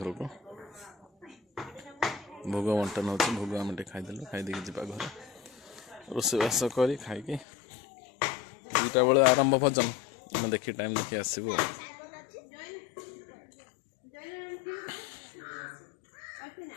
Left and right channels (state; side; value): drops out; right; at 7.5 s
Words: ଘରକୁ ଭୋଗ ବଣ୍ଟନ ହେଉଛି ଭୋଗ ଆମେ ଟିକେ ଖାଇଦେଲୁ ଖାଇଦେଇକି ଯିବା ଘରେ ରୋଷେଇବାସ କରି ଖାଇକି 2ଟା ବେଳେ ଆରମ୍ଭ ଭଜନ ଆମେ ଦେଖି ଟାଇମ୍ ଦେଖି ଆସିବୁ